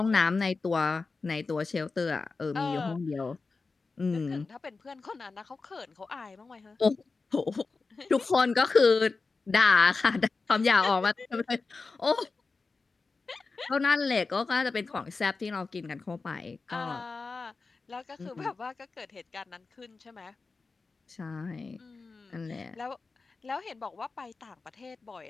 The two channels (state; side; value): quieter; right; 4.1 dB